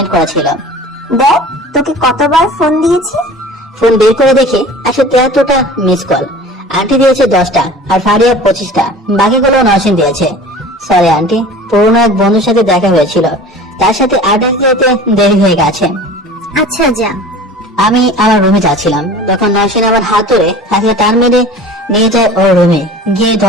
করা ছিল। দেখ, তোকে কতবার ফোন দিয়েছি। ফোন বের করে দেখি 173টা মিস কল। আন্টি দিয়েছে 10টা আর ফারিয়া 25টা, বাকিগুলো নসিন দিয়েছে। সরি আন্টি, পুরোনো এক বন্ধুর সাথে দেখা হয়েছিল, তার সাথে আড্ডা দিতে দেরি হয়ে গেছে। আচ্ছা যা। আমি আমার রুমে যাচ্ছিলাম, তখন নসিন আমার হাত ধরে হাতে টান মেরে নিয়ে যায় ওর রুমে, গিয়ে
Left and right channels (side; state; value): both; normal; correlation 0.41